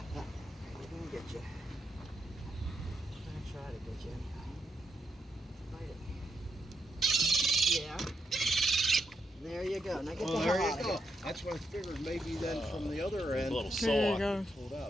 get you. We're gonna try to get you. Bite it. Yeah. There you go. Now get Well, the there hell you out of go. here. That's what I figured. Maybe then from the other end. A little Pulled sore.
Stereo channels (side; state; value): both; normal; correlation 0.82